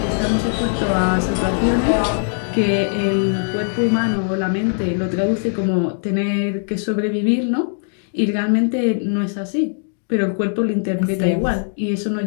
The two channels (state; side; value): silent; right; digital silence